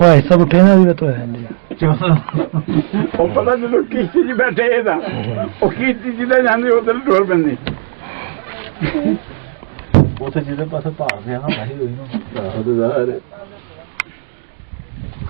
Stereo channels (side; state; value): left; silent; digital silence